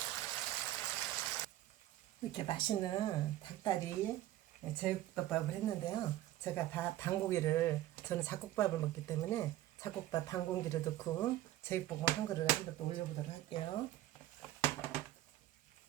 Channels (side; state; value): left; quieter; 14.6 dB